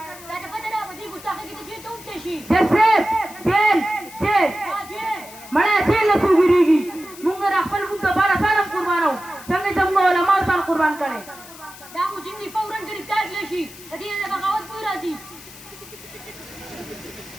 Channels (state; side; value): noise; left; hiss, 18 dB below the sound